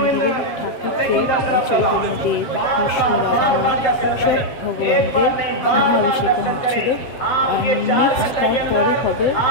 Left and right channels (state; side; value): late; right; 7.5 ms